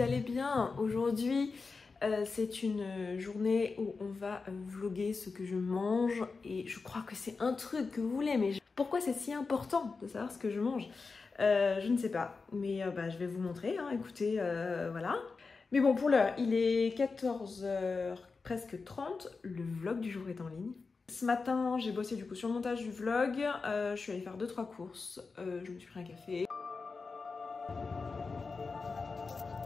allez bien. Aujourd'hui, c'est une journée où on va vlogger ce que je mange et je crois que c'est un truc que vous voulez, mais pourquoi c'est si important de savoir ce que je mange? Je ne sais pas, mais je vais vous montrer, hein. Écoutez, voilà. Mais bon, pour l'heure, il est 14h presque 30, le vlog du jour est en ligne. Ce matin, j'ai bossé du coup sur le montage du vlog, je suis allée faire 2-3 courses, je me suis pris un café.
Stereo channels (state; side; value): quieter; right; 4.4 dB